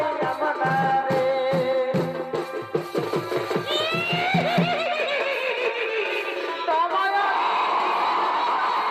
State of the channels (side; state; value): both; identical; correlation 1.00